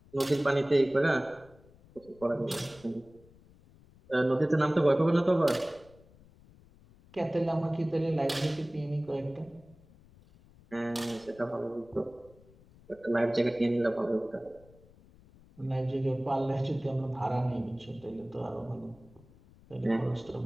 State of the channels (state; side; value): noise; left; rumble, 25 dB below the sound